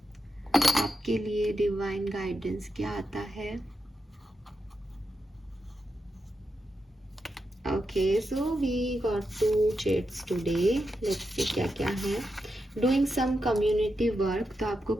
आपके लिए डिवाइन गाइडेंस क्या आता है। Okay, so we got 2 chats today. Let's see क्या क्या है। डूइंग सम कम्युनिटी वर्क, तो आपको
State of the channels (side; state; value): both; normal; correlation 0.87